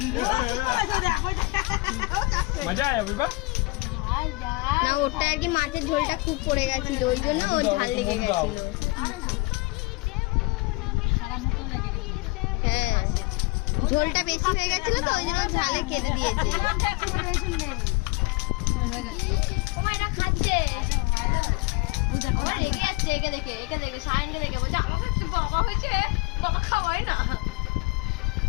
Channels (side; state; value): right; quieter; 24.0 dB